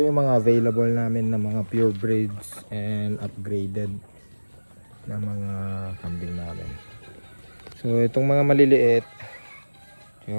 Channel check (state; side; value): inverted; both; correlation -1.00